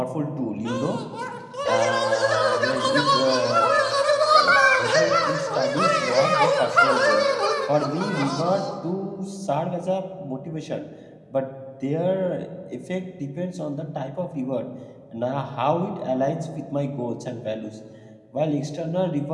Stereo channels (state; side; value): identical; both; correlation 1.00